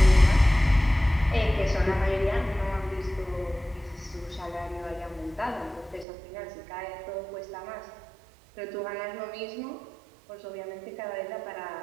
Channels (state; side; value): drops out; left; at 6.1 s